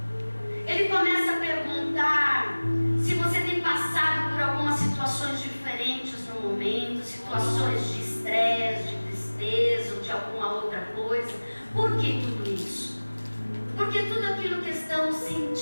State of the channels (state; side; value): inverted; both; correlation -1.00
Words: Ele começa a perguntar se você tem passado por algumas situações diferentes no momento, situações de estresse, de tristeza ou de alguma outra coisa. Por que tudo isso? Porque tudo aquilo que estamos